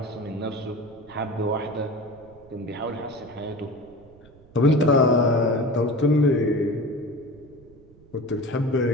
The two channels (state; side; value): noise; right; rumble, 25 dB below the sound